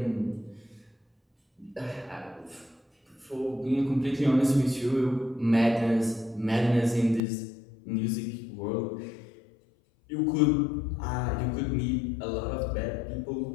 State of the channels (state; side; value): drops out; right; at 7.2 s